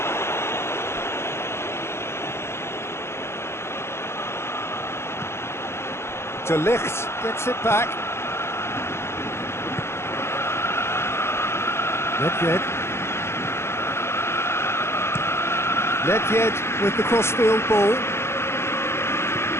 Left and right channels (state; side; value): late; right; 0.12 ms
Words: De Ligt gets it back. Nedved. Nedved with the crossfield ball.